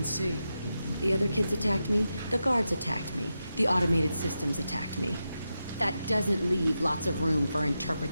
see. The other kids attacked me. The guards attacked me. The automated systems attacked me. That doesn't leave lots of room for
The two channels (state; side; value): inverted; both; correlation -0.89